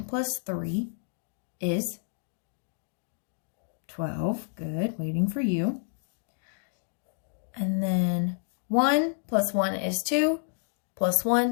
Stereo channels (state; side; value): silent; right; digital silence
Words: plus 3 is 12. Good, waiting for you. And then 1 plus 1 is 2, plus